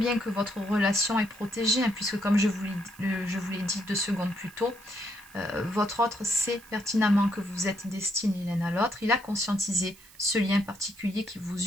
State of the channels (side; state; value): right; noise; hiss, 23 dB below the sound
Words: que votre relation est protégée, hein, puisque comme je vous l'ai dit 2 secondes plus tôt, votre autre sait pertinemment que vous êtes destinés l'un à l'autre. Il a conscientisé ce lien particulier qui vous